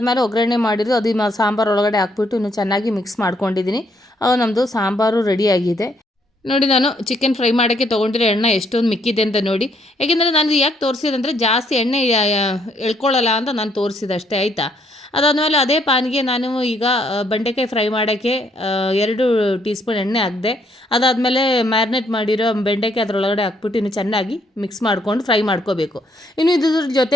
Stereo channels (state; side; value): normal; both; correlation 0.70